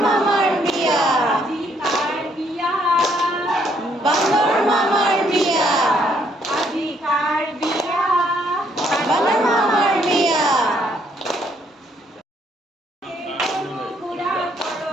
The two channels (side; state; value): both; normal; correlation 0.69